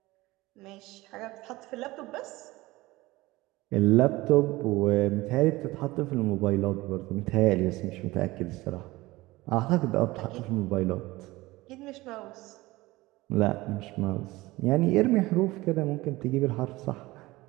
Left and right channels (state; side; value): quieter; left; 19.9 dB